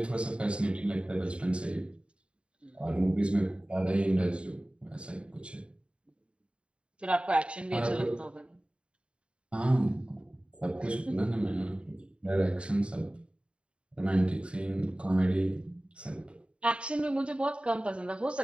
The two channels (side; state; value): left; late; 0.056 ms